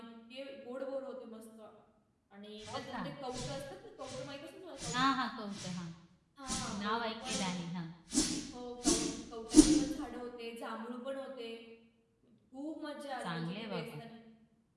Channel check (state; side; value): identical; both; correlation 1.00